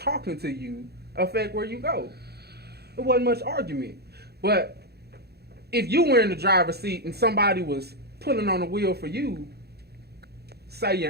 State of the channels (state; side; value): late; left; 0.47 ms